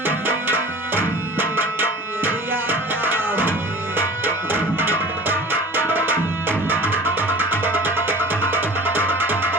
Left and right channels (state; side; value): normal; both; correlation 0.41